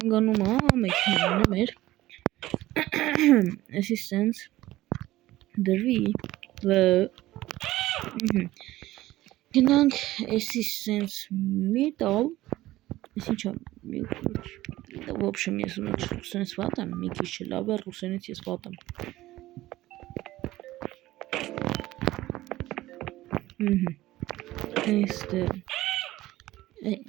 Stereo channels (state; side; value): quieter; left; 16.4 dB